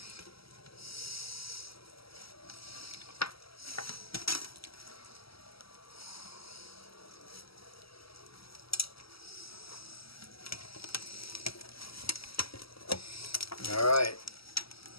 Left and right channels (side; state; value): right; late; 0.75 ms